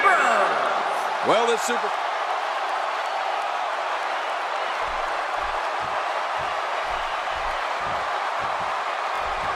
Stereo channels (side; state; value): both; identical; correlation 1.00